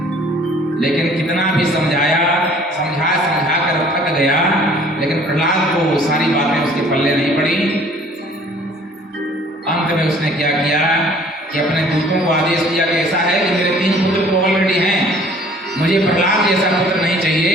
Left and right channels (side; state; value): both; normal; correlation 0.54